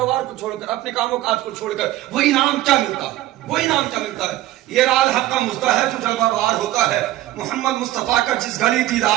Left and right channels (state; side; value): quieter; left; 15.3 dB